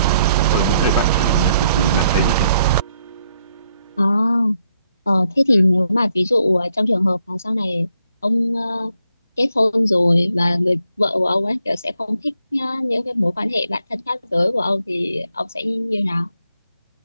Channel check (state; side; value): inverted; both; correlation -0.76